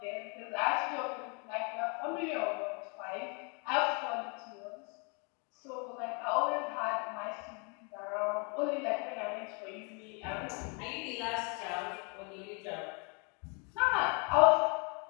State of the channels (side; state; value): right; quieter; 34.7 dB